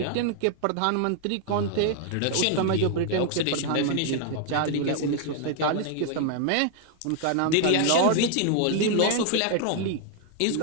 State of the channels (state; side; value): different; both; correlation 0.00